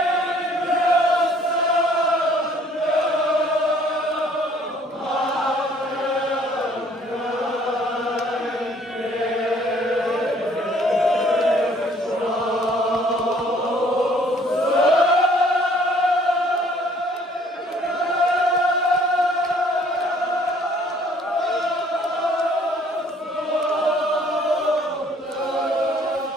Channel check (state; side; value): normal; both; correlation 0.59